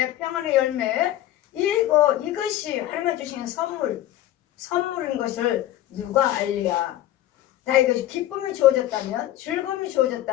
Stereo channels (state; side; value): quieter; right; 13.7 dB